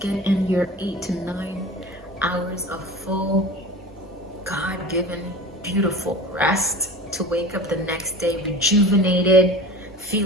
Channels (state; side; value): normal; both; correlation 0.36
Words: in your 8 to 9 hours of full, God-given, beautiful rest to wake up the next day rejuvenated,